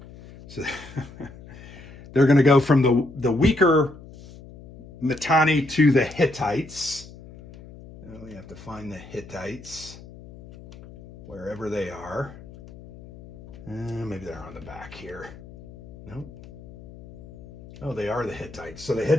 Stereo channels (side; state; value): left; noise; hum, 18 dB below the sound